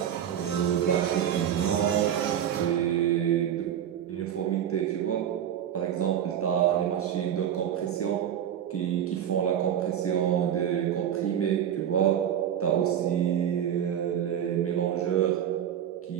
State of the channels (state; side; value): quieter; left; 9.8 dB